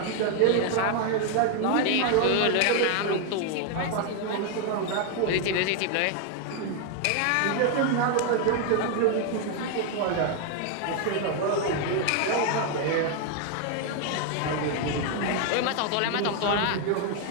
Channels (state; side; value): different; both; correlation 0.01